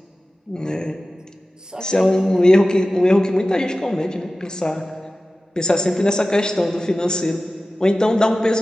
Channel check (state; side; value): normal; both; correlation 0.96